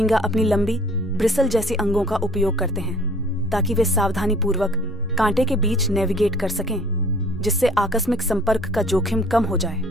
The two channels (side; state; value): both; normal; correlation 0.53